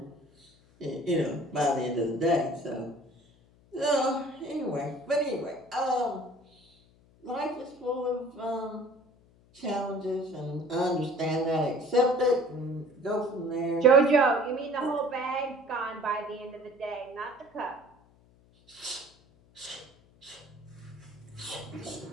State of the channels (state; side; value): noise; left; hum, 29 dB below the sound